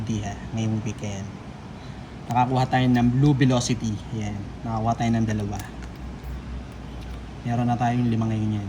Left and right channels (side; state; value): both; identical; correlation 1.00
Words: ngayong weekend. Nakakuha tayo ng Blue Velocity. Yan. Nakakuha tayo ng 2. Meron na tayong 5 ngayon yan.